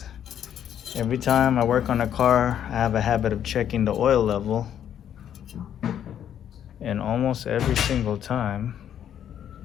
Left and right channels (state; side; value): quieter; right; 9.8 dB